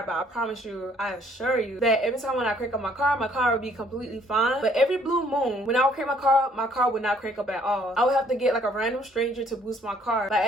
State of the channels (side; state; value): both; normal; correlation 0.62